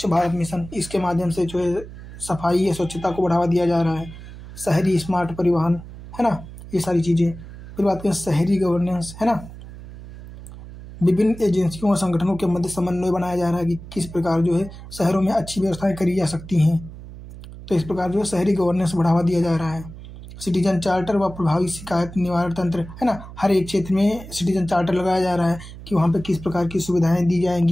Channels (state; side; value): noise; right; hum, 15 dB below the sound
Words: भारत मिशन, इसके माध्यम से जो है सफाई या स्वच्छता को बढ़ावा दिया जा रहा है, शहरी स्मार्ट परिवहन, है ना, ये सारी चीज़ें। फिर बात करें शहरी गवर्नेंस, है ना, विभिन्न एजेंसियों और संगठनों के मध्य समन्वय बनाया जा रहा है कि किस प्रकार जो है शहरों में अच्छी व्यवस्थाएं करी जा सकती हैं। तो इस प्रकार जो है शहरी गवर्नेंस बढ़ावा दिया जा रहा है। सिटीजन चार्टर व प्रभावी शिकायत निवारण तंत्र, है ना, हर एक क्षेत्र में सिटीजन चार्टर लगाया जा रहा है कि वहाँ पे किस प्रकार की सुविधाएं दी